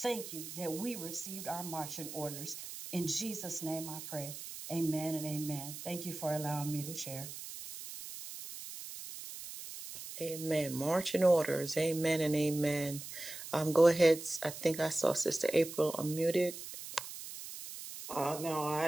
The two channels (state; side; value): noise; right; hiss, 10 dB below the sound